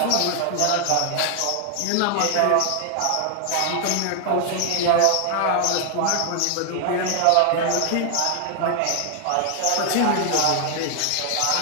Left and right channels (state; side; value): different; both; correlation 0.00